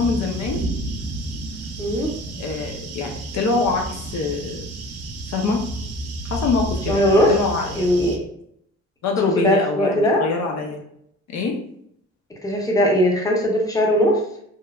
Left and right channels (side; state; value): both; normal; correlation 0.42